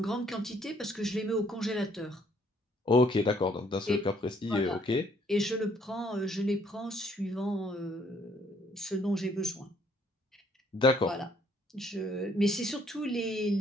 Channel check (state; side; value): normal; both; correlation 0.65